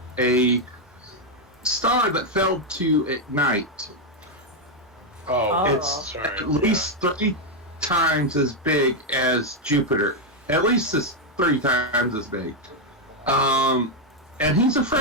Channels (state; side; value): normal; both; correlation 0.02